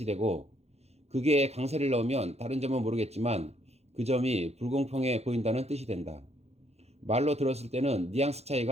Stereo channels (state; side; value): late; left; 0.31 ms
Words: 되고, 그게 강세를 넣으면 다른 점은 모르겠지만 그 점이 불공평해 보인다는 뜻이 된다. 말로 들었을 때는 뉘앙스